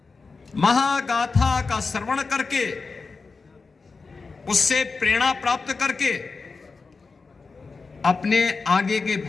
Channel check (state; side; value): quieter; right; 4.4 dB